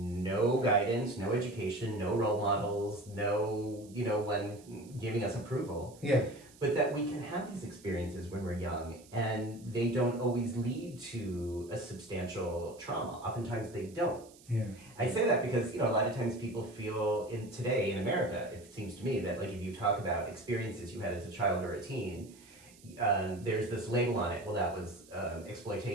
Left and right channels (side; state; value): right; noise; hiss, 24 dB below the sound